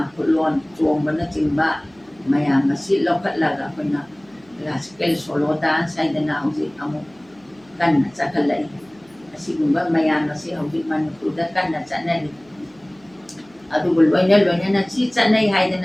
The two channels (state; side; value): noise; right; hum, 30 dB below the sound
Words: ꯈꯨꯠꯂꯣꯟ ꯆꯣꯡꯕꯅꯆꯤꯡꯕ ꯃꯌꯥꯝ ꯑꯁꯤ ꯂꯧꯈꯠꯂꯒ ꯑꯩꯈꯣꯏꯅ ꯀ꯭ꯂꯥꯁꯤꯀꯦꯜ ꯁꯣꯂꯣ ꯗꯥꯟꯁ ꯍꯥꯏꯗꯅ ꯍꯧꯖꯤꯛ ꯑꯃꯨꯛ ꯀꯟꯅ ꯆꯠꯈꯠꯂꯛꯏ꯫ ꯑꯁꯤꯒꯨꯝꯕ ꯃꯌꯥꯝ ꯑꯁꯤ ꯍꯧꯖꯤꯛ ꯃꯅꯤꯄꯨꯔꯗ ꯀꯟꯅ ꯆꯠꯅꯔꯤ꯫ ꯑꯗꯨꯕꯨ ꯂꯣꯏꯅꯅ ꯁꯤ ꯆꯠꯅꯩ